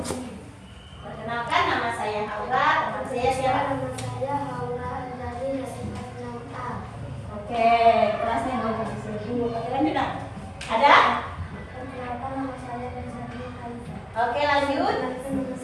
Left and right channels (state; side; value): identical; both; correlation 1.00